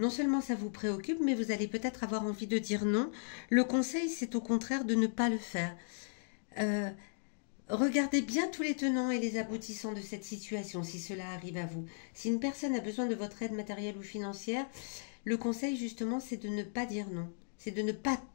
seulement ça vous préoccupe, mais vous allez peut-être avoir envie de dire non. Le conseil, c'est au contraire de ne pas le faire. Regardez bien tous les tenants et les aboutissants de cette situation, si cela arrive à vous. Si une personne a besoin de votre aide matérielle ou financière, le conseil, justement, c'est de ne pas dire non. C'est de ne pas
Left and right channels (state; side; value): silent; right; digital silence